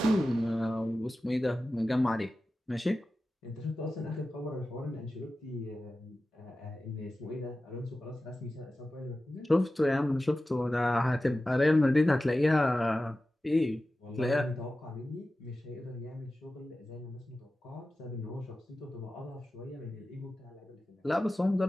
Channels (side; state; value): both; normal; correlation 0.94